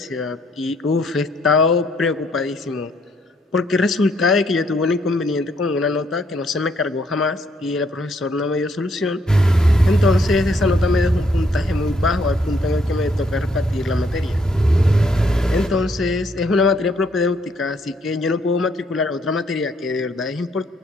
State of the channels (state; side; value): normal; both; correlation 0.70